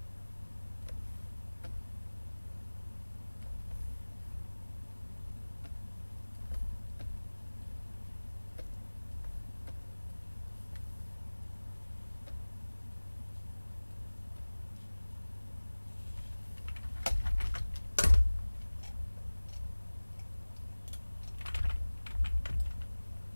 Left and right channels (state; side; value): inverted; both; correlation -1.00